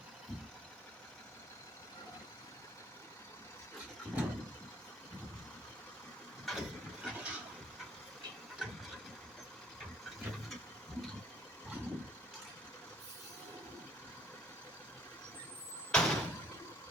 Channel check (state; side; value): normal; both; correlation 0.60